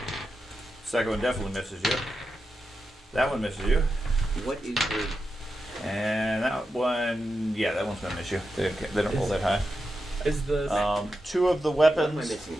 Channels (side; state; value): both; normal; correlation 0.89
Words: Second one definitely misses you. That one misses you. What is the And that one, yeah, that one's gonna miss you. They don't roll that high. Is the Two of the what am I weapons, missing